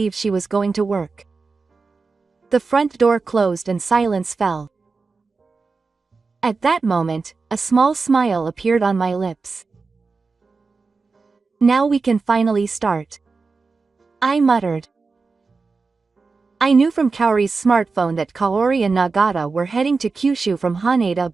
she was going to work. The front door closed and silence fell. At that moment, a small smile appeared on my lips. Now we can finally start, I muttered. I knew from Kaori's smartphone that Kaori and Nagata were heading to Kyushu from Haneda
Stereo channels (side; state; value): left; quieter; 4.3 dB